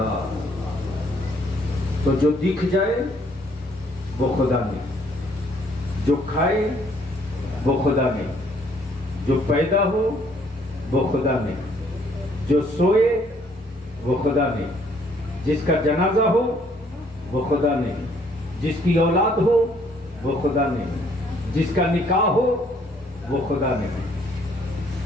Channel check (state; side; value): normal; both; correlation 0.64